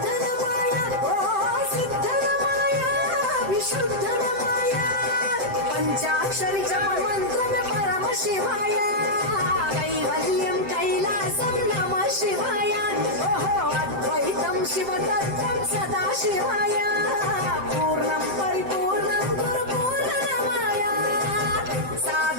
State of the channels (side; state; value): left; late; 7.7 ms